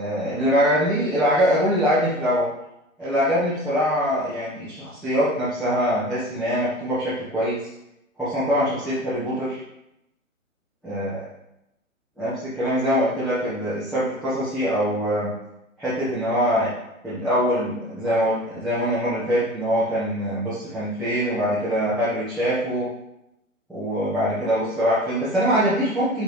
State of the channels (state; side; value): normal; both; correlation 0.38